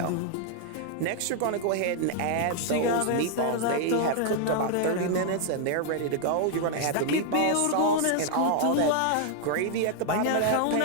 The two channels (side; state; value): both; different; correlation 0.00